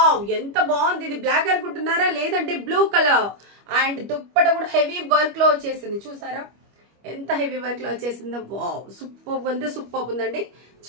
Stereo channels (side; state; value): left; late; 25 ms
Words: ఎంత బాగుంది. ఇది బ్లాక్ అనుకుంటున్నారా? లేదంటే బ్లూ కలర్. అండ్ దుప్పట కూడా హెవీ వర్క్ లో వచ్చేసింది. చూసారా ఎంత హెవీ వర్క్ లో వచ్చేసిందో? వావ్ సూపర్ ఉంది, సూపర్ ఉందండి.